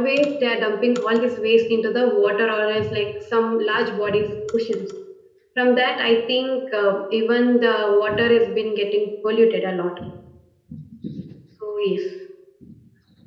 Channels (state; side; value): identical; both; correlation 1.00